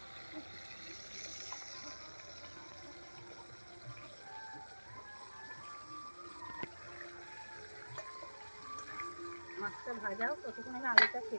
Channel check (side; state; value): both; inverted; correlation -1.00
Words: মাছটা ভাজাও, ততক্ষণ আমি আলুটা